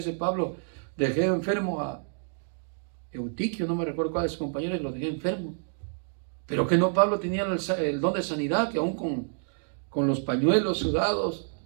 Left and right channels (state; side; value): silent; left; digital silence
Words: Pablo, dejé enfermo a Eutiquio, no me recuerdo cuál de sus compañeros, y lo dejé enfermo. Pero que no, Pablo tenía el don de sanidad, que aún con los pañuelos sudados,